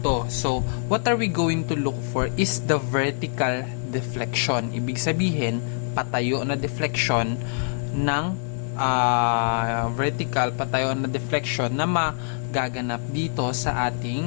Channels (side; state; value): right; silent; digital silence